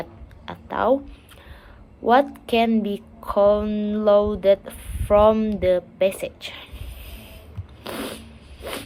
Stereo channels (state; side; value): identical; both; correlation 1.00